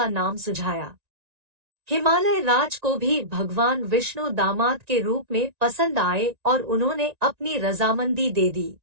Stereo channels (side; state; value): left; late; 1.9 ms